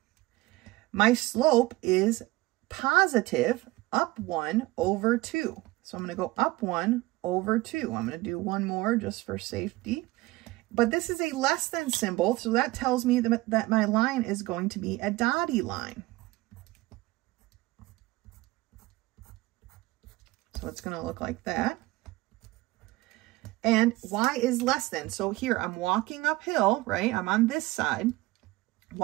My slope is positive, up 1 over 2. So I'm going to go up 1 over 2. I'm going to do one more just for safety. But this is a less than symbol, so that tells me that my line is going to be a dotted line. So it's going to look like that. And y is less than. So here I'm walking uphill, right? I'm on this side.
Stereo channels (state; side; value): quieter; left; 20.0 dB